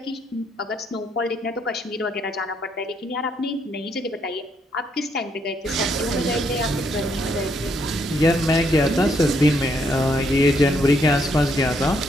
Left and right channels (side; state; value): both; normal; correlation 0.74